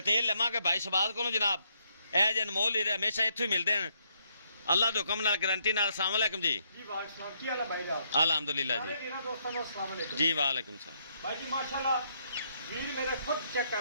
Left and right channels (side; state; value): both; inverted; correlation -0.74